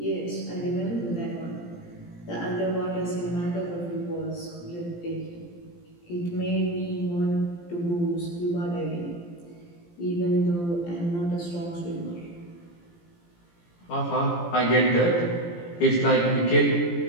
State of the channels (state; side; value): late; right; 17 ms